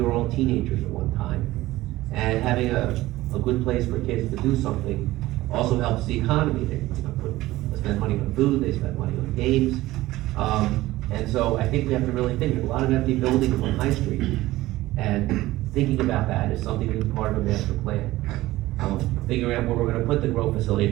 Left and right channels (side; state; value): left; quieter; 17.3 dB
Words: were all teenagers at one time. And having a good place for kids to do something also helps the economy. They spend money on food, they spend money on games. And so I think we have to really think. There's a lot of empty buildings on High Street. And thinking about that is something that's part of a master plan. Figuring out where we're gonna put the grow facility,